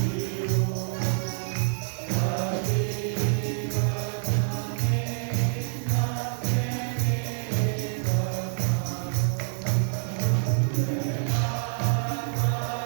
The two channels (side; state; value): left; silent; digital silence